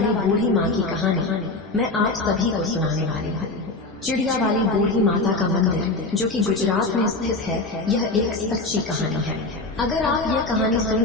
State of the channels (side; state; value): right; quieter; 3.1 dB